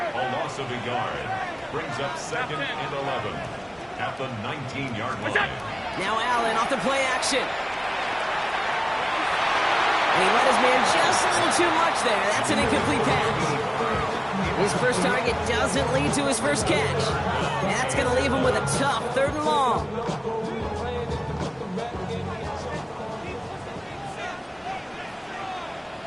loss of a yard brings up 2nd and 11 at the 19-yard line. Now Allen off the play action. And he let his man just a little too much there. That's an incomplete pass. His first target doesn't lead to his first catch. And that's going to leave him with a tough 3rd and long.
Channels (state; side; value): identical; both; correlation 1.00